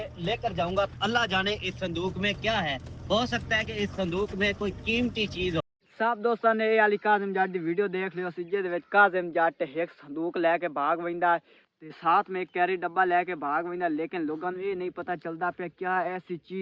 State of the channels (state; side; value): identical; both; correlation 1.00